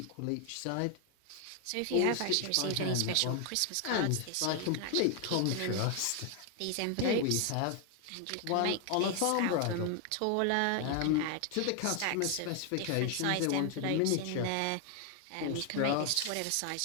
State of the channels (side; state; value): both; different; correlation 0.01